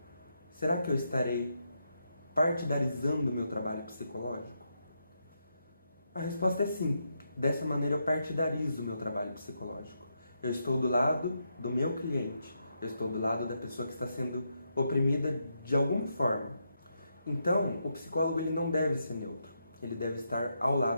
Será que eu estarei partidarizando o meu trabalho psicológico? A resposta é sim. Dessa maneira eu partidarizo o meu trabalho psicológico. Eu estou do lado do meu cliente. Eu estou do lado da pessoa que está sendo oprimida de alguma forma. Então, o psicólogo ele não deve ser neutro. Ele deve estar ao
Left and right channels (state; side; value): inverted; both; correlation -0.82